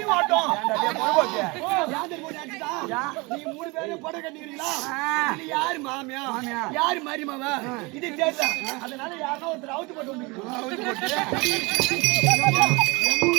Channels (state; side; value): quieter; left; 26.1 dB